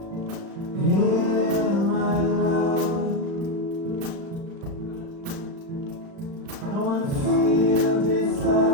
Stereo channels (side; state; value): left; late; 36 ms